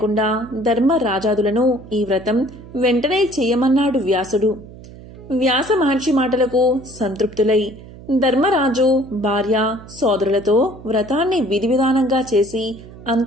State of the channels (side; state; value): right; noise; hum, 17 dB below the sound